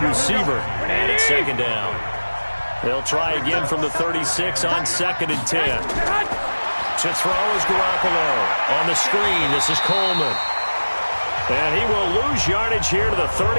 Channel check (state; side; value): inverted; both; correlation -1.00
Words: receiver. And it's second down. They'll try again from the 36 on 2nd and 10. To throw is Garoppolo. On the screen, this is Coleman. And he will lose yardage here to the